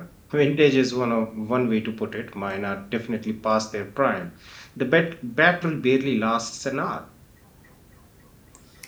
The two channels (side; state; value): both; identical; correlation 1.00